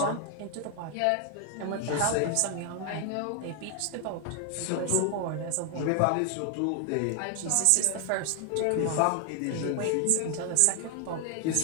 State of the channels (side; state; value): both; different; correlation 0.00